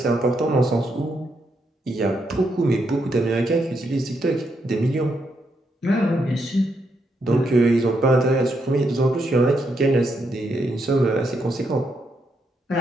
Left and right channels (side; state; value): both; normal; correlation 0.79